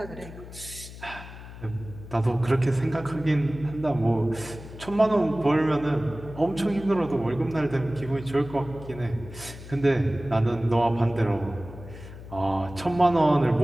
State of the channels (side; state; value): left; noise; hum, 14 dB below the sound